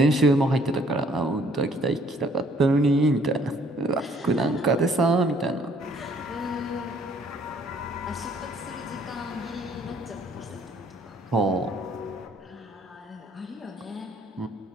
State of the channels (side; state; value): both; normal; correlation 0.61